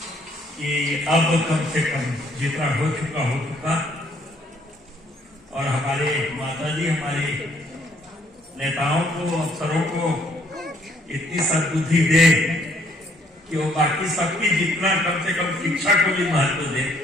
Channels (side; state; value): both; normal; correlation 0.66